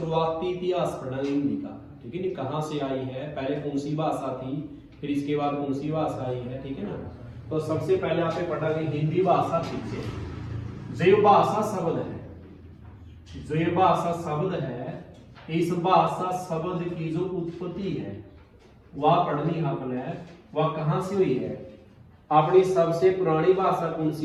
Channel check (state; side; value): identical; both; correlation 1.00